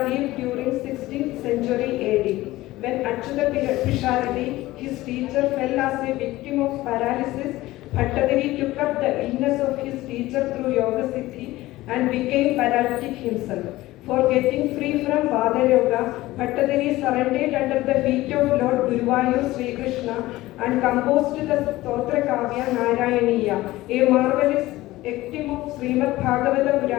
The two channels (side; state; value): right; quieter; 17.6 dB